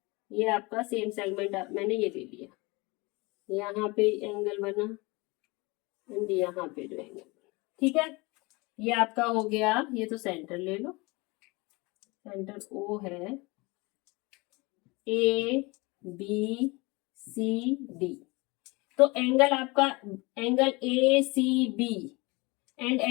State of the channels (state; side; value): quieter; right; 25.2 dB